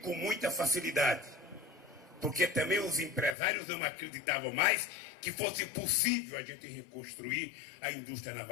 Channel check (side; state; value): right; drops out; at 3.4 s